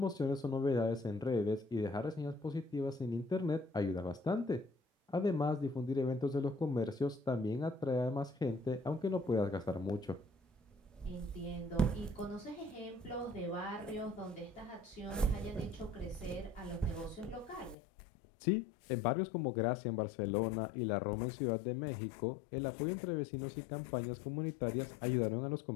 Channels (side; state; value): right; drops out; at 17.8 s